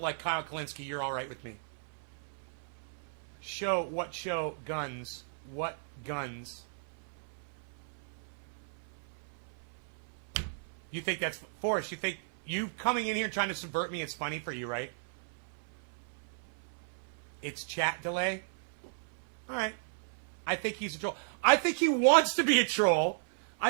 like Kyle Kalinske, you're all right with me. What show? Guns. What guns? You think that's... Forrest, you think you coming in here trying to subvert me is funny for you, right? It's chat delay? Alright. I think he's a troll. I think he wants to be a troll.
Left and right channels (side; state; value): left; silent; 54 dB below the other